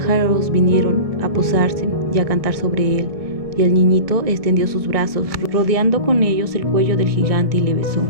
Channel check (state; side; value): late; left; 1.7 ms